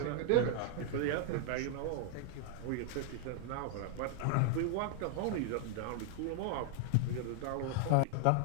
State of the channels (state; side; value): different; both; correlation 0.00